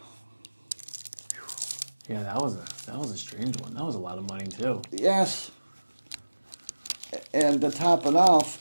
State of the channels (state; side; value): inverted; both; correlation -1.00